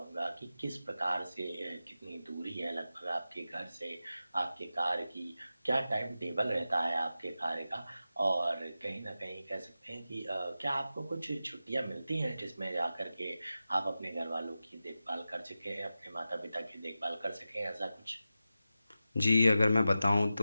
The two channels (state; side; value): inverted; both; correlation -0.93